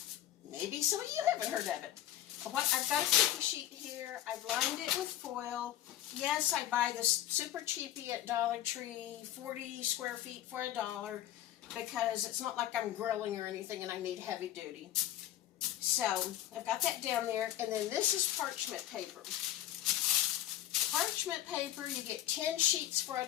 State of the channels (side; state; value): right; quieter; 13.0 dB